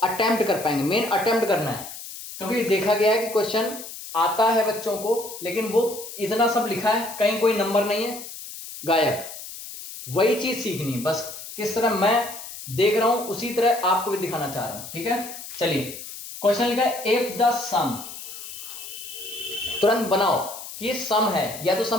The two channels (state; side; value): noise; left; hiss, 12 dB below the sound